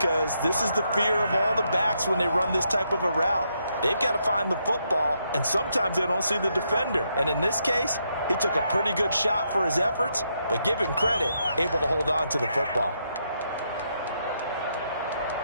this is the fear of all the backs when they run this type of a route. They've got to find the football, and sometimes they don't see the defender. And in this case, he took a pretty good shot for his efforts, but give him credit, able to hold on to the football.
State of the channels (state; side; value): inverted; both; correlation -0.79